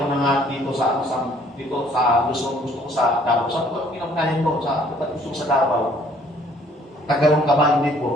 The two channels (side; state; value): both; normal; correlation 0.60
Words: mo na nga dito sa Luzon, gusto ko sa Davao. Saan ko, pinagkanin ko, gusto ko sa Davao. Tagalong ka ba, hindi